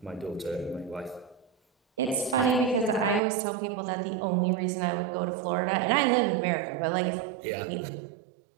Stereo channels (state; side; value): drops out; left; at 3.2 s